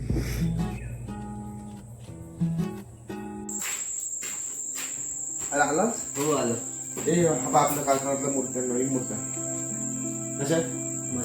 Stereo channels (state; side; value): identical; both; correlation 1.00